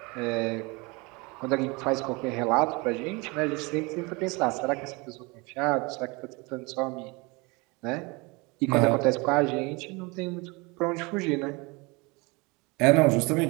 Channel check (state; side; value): quieter; left; 26.7 dB